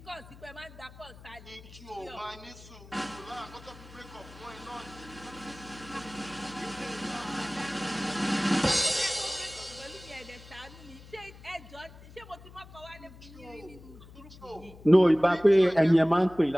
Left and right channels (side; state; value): left; noise; hum, 19 dB below the sound